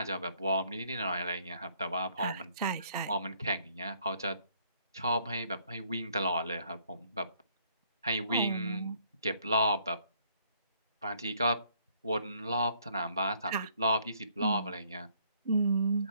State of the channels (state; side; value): inverted; both; correlation -0.67